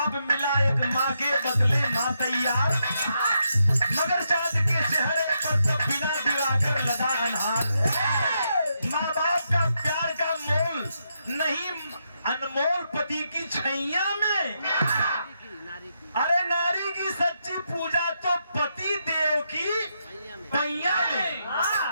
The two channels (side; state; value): both; inverted; correlation -0.82